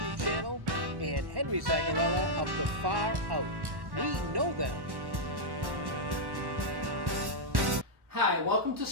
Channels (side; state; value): left; late; 1.1 ms